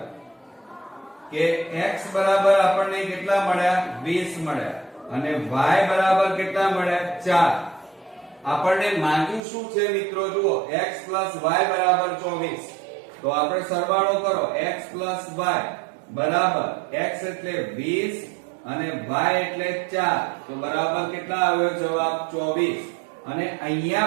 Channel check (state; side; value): drops out; left; at 9.4 s